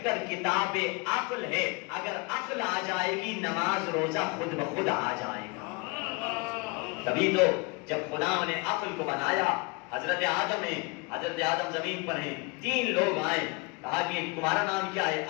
کتاب عقل ہے. اگر عقل آ جائے گی نماز روزہ خود بخود آ جائے گا. تبھی تو جب خدا نے عقل کو بنایا, حضرت آدم زمین پر ہیں, 3 لوگ آئے, کہا کہ تمہارا نام کیا ہے؟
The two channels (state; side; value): quieter; right; 29.1 dB